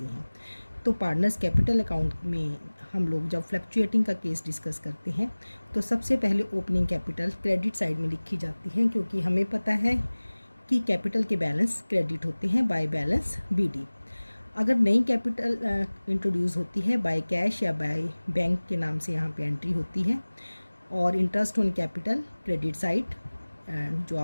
हैं। तो पार्टनर्स कैपिटल अकाउंट में हम लोग जब फ्लक्चुएटिंग का केस डिस्कस करते हैं तो सबसे पहले ओपनिंग कैपिटल क्रेडिट साइड में लिखी जाती है, क्योंकि हमें पता है कि कैपिटल के बैलेंस क्रेडिट होते हैं बाय बैलेंस BD। अगर नई कैपिटल इंट्रोड्यूस होती है बाय कैश या बाय बैंक के नाम से यहाँ पे एंट्री होती है। और interest on capital credit side, जो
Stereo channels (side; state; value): both; inverted; correlation -1.00